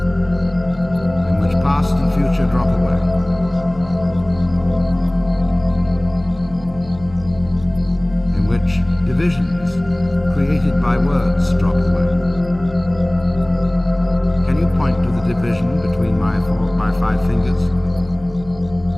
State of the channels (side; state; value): right; noise; hum, 21 dB below the sound